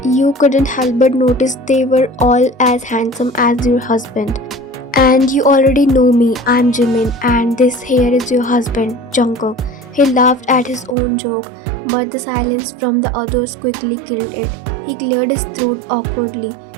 You couldn't help but notice they were all as handsome as your husband. And you already know me, I'm Jimin, and this here is your husband, Jungkook. He laughed at his own joke, but the silence from the others quickly killed it. He cleared his throat awkwardly.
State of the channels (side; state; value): left; drops out; at 11.0 s